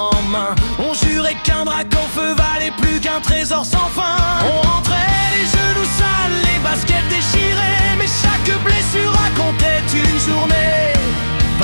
en main, on jurait qu'un drac en feu valait plus qu'un trésor sans fin. On rentrait les genoux sales, les baskets déchirées, mais chaque blessure racontait une journée.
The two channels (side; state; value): both; inverted; correlation -1.00